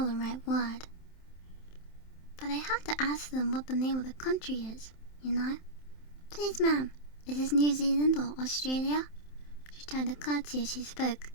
the right word. But I have to ask them what the name of the country is, you know. Please, ma'am, is this New Zealand or Australia? She tried to curtsy as she spoke.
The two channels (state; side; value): late; right; 27 ms